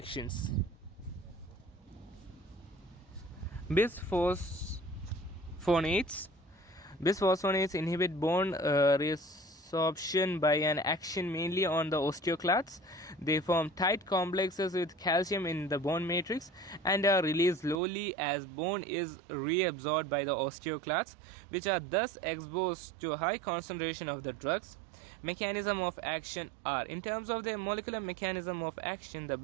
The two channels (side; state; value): left; drops out; at 17.8 s